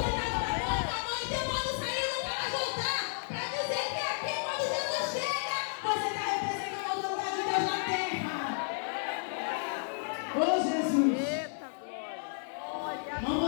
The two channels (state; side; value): silent; right; 56 dB below the other